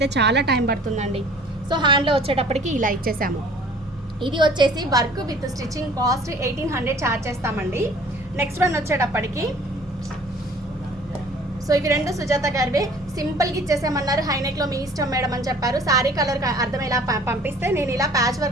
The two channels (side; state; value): both; normal; correlation 0.51